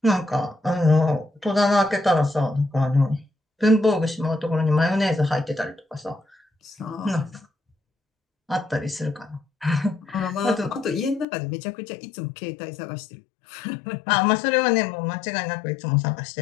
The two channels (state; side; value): drops out; right; at 11.2 s